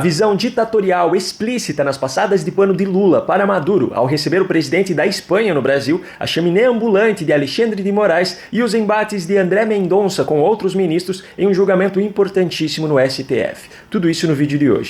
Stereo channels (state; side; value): identical; both; correlation 1.00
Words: ditatorial explícita nas passadas de pano de Lula para Maduro ao receber o presidente da Espanha no Brasil, a chaminé ambulante de Alexandre de Moraes e os embates de André Mendonça com outros ministros em um julgamento importantíssimo no STF. Tudo isso no vídeo de